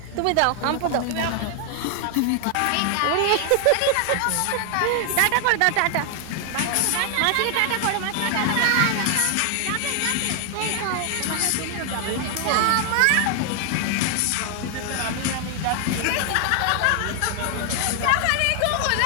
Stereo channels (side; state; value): both; different; correlation 0.00